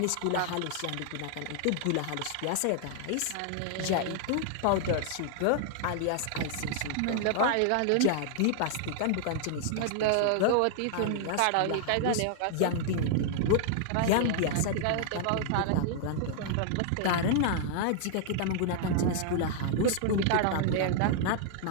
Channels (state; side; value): different; both; correlation -0.01